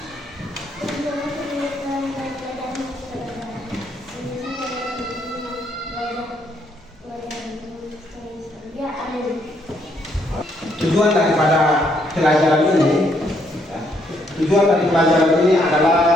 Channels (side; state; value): both; normal; correlation 0.72